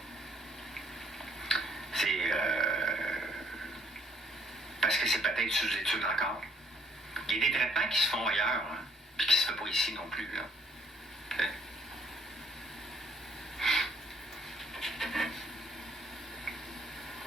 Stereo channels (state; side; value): normal; both; correlation 0.65